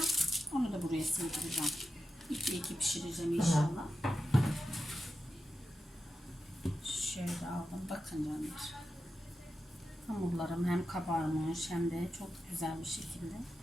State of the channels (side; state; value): both; normal; correlation 0.91